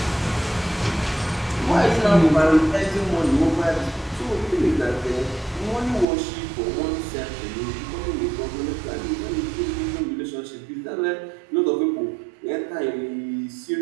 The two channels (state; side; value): drops out; left; at 6.1 s